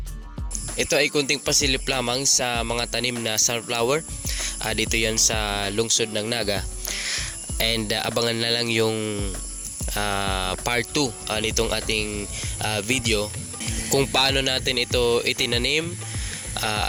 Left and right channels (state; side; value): identical; both; correlation 1.00